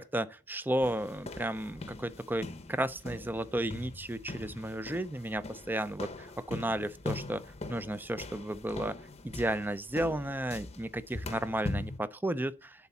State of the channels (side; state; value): both; normal; correlation 0.80